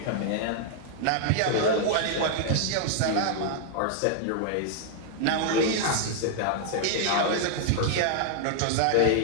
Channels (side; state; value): both; different; correlation -0.01